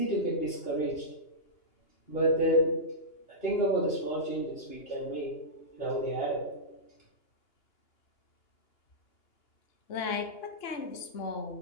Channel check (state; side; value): late; right; 2.8 ms